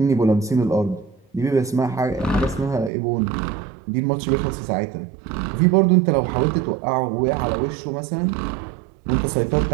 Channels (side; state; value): left; drops out; at 2.9 s